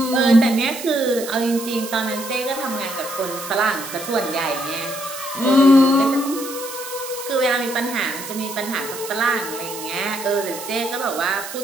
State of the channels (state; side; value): noise; right; hiss, 10 dB below the sound